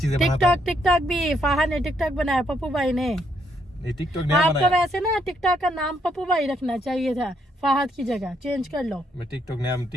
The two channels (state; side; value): normal; both; correlation 0.74